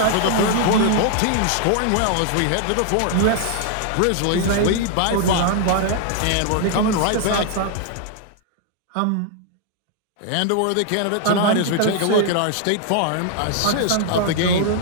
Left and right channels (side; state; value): both; different; correlation 0.00